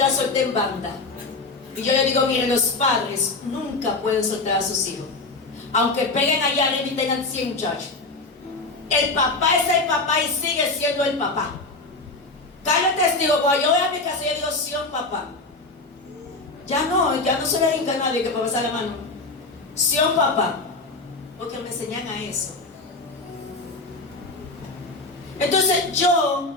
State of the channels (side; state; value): right; quieter; 3.4 dB